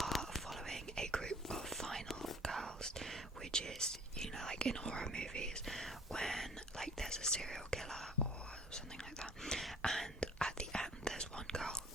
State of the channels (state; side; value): normal; both; correlation 0.52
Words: following a group of final girls, which is, you know, like in horror movies when like there's a serial killer or something like that, and at the end there's one girl